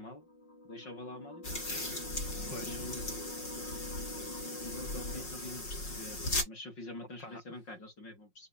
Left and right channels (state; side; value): late; right; 5.5 ms